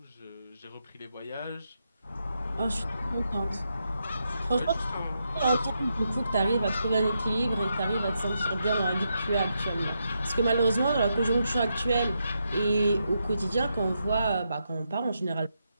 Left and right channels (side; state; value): both; inverted; correlation -0.83